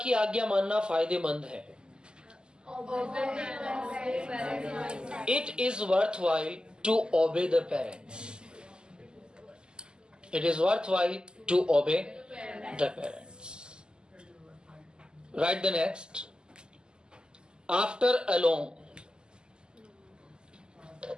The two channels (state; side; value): late; left; 0.047 ms